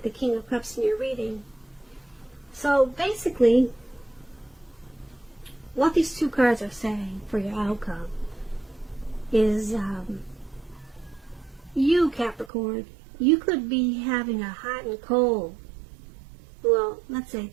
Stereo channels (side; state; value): left; drops out; at 12.5 s